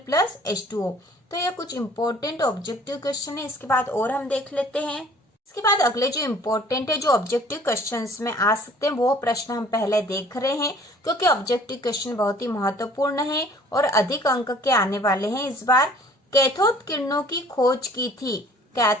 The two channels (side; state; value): both; normal; correlation 0.53